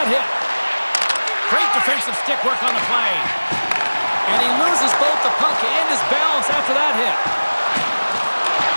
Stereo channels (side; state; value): both; inverted; correlation -1.00